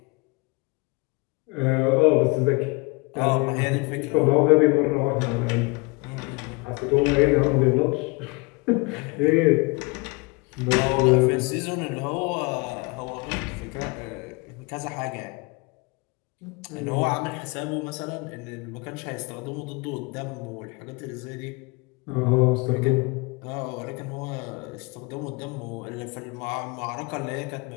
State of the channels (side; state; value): right; quieter; 27.9 dB